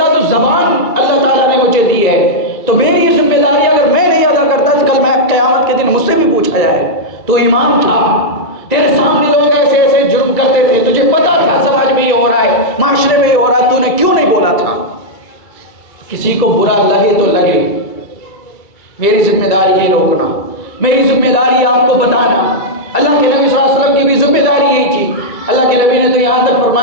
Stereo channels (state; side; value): late; right; 2.3 ms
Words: تو زبان اللہ تعالیٰ نے مجھے دی ہے، تو میری یہ ذمہ داری اگر میں نہیں ادا کرتا تو کل میں قیامت کے دن مجھ سے بھی پوچھا جائے تو امام تھا، تیرے سامنے لوگ ایسے ایسے جرم کرتے تھے، تجھے پتا تھا سماج میں یہ ہو رہا ہے، معاشرے میں یہ ہو رہا ہے، تو نے کیوں نہیں بولا تھا؟ کسی کو برا لگے تو لگے، میری ذمہ داری ہے روکنا، میری ذمہ داری ہے آپ کو بتانا۔ اللہ کے نبی صلی اللہ علیہ وسلم کی بھی ذمہ داری یہی تھی، اللہ کے نبی نے تو یہاں تک